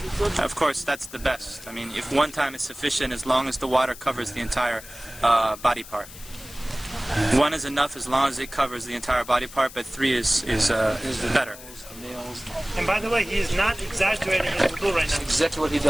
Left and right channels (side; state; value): left; noise; hiss, 16 dB below the sound